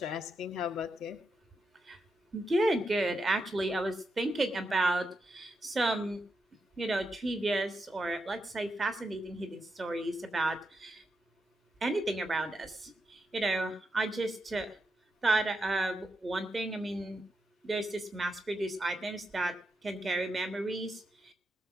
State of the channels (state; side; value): normal; both; correlation 0.85